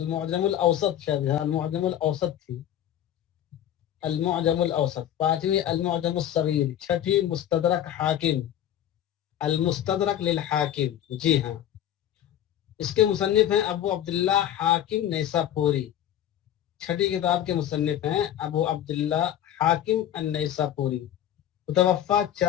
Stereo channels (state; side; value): quieter; right; 11.1 dB